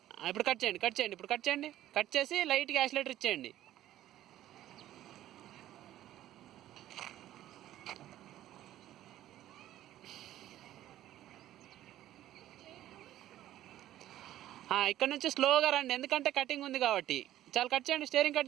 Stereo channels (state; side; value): quieter; left; 13.3 dB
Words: ఇప్పుడు కట్ చేయండి, కట్ చేయండి. ఇప్పుడు కట్ చేయండి, కట్ చేసి లైట్గా యాక్సిలేటర్ ఇచ్చేయండి. ఇక్కడ నుంచి స్లోగా రండి, ఎందుకంటే కటింగ్ ఉంది కాబట్టి. చాలా కట్ చేయండి, స్టీరింగ్